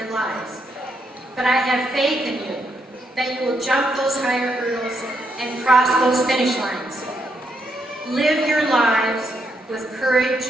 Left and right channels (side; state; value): both; normal; correlation 0.78